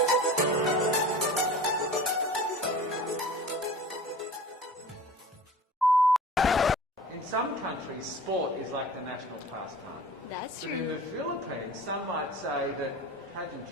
In some countries, sport is like the national pastime. That's But in true. the Philippines, some might say that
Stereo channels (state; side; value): normal; both; correlation 0.39